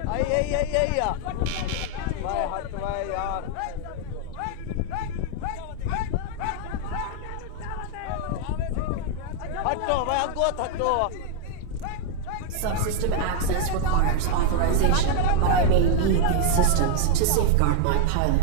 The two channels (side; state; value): both; different; correlation 0.00